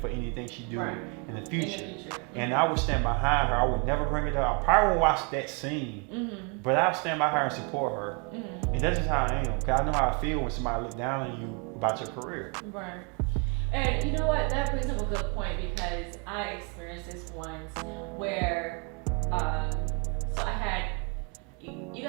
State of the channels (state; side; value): quieter; left; 34.4 dB